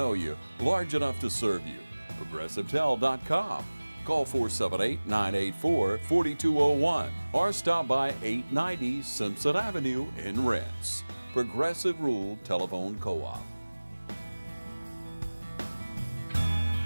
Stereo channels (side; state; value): both; inverted; correlation -1.00